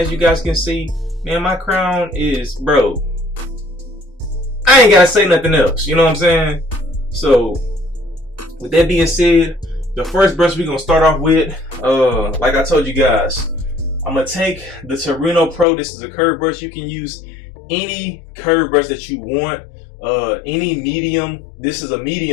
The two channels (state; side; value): drops out; right; at 15.7 s